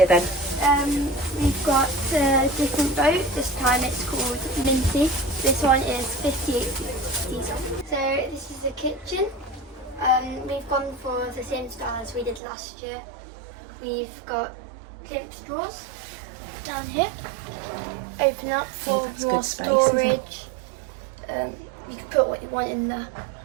then? We've got a different boat. This time it's called Minty. This one is 58 diesel. So this is the kitchen. We've gone for the same style as we did last year. We've got glimpse drawers down here. Open up for that's your good space, isn't it? storage. You can put what you want in there.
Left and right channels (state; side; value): drops out; left; at 12.4 s